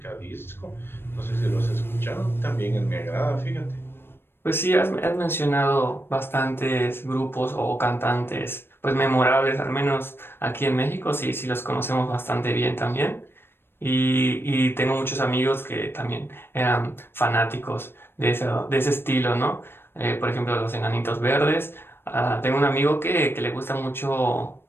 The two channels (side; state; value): right; late; 0.11 ms